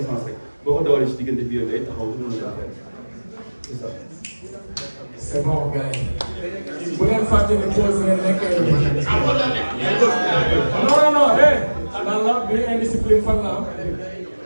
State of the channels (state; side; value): inverted; both; correlation -1.00